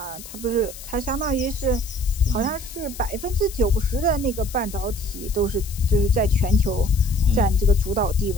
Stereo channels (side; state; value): left; noise; hiss, 15 dB below the sound